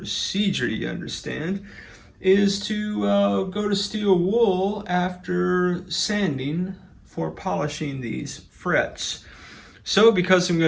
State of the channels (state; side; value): identical; both; correlation 1.00